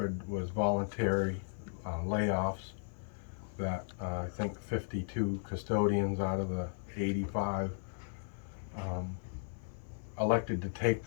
was voluntary layoffs. That I think 52 custodians out of the 85 elected to take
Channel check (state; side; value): silent; right; 54 dB below the other